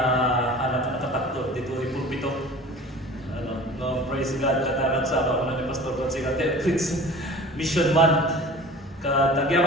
hanap na nakatakto dito ay pulpito. No, praise God, kataran sa ako ni Pastor Consiga Prince Mission Month.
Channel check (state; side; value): normal; both; correlation 0.41